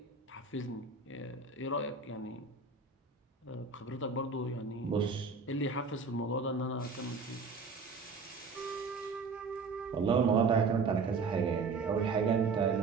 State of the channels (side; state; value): left; quieter; 4.5 dB